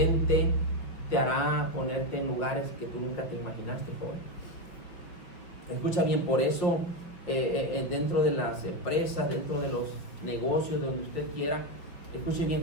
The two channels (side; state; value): right; late; 5.4 ms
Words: te hará ponerte en lugares que tú nunca te imaginaste, joven. Escucha bien, por eso dentro de las empresas, dentro de los negocios, donde usted quiera, escuche bien,